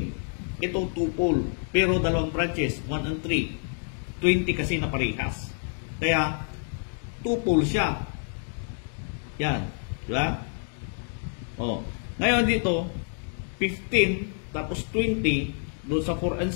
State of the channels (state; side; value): silent; right; 57 dB below the other